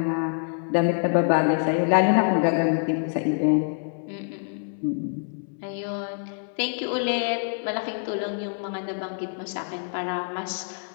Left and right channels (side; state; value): right; silent; 61 dB below the other